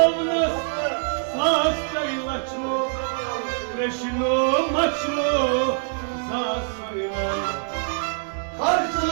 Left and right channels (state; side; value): silent; left; digital silence